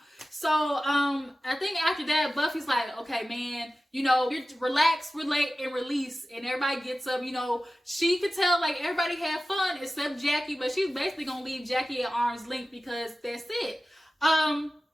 So, I think after that, Buffy's like, okay, man, you know, you relax, relate, and release. And everybody gets up, you know. She could tell, like, everybody had fun except Jackie. But she's basically going to leave Jackie at arm's length because that's it. And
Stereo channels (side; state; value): both; normal; correlation 0.95